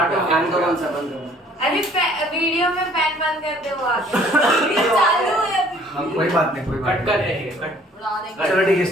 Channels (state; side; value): normal; both; correlation 0.57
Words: फैन तो कौन सा बंद करना? अरे वीडियो में फैन बंद कर दे वो आगे। ये चालू है अभी। कोई बात नहीं, कोई बात कट कर देंगे, कट। चलो ठीक है,